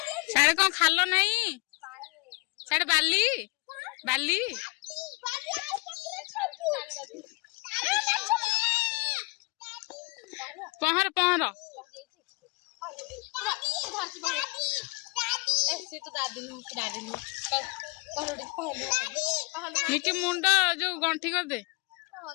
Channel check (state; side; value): quieter; right; 27.9 dB